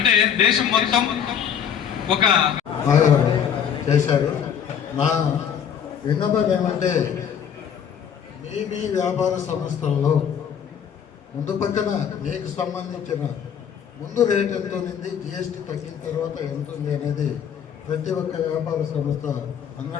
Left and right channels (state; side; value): quieter; right; 8.2 dB